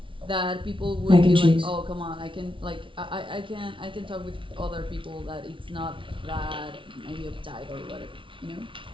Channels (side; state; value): left; late; 0.25 ms